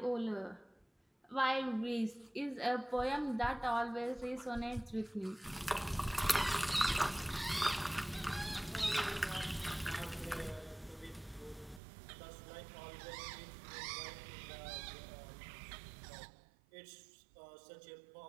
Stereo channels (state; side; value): drops out; left; at 11.8 s